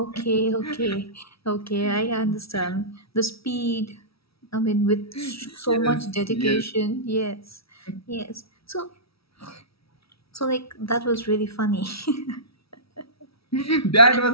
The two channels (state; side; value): late; right; 0.76 ms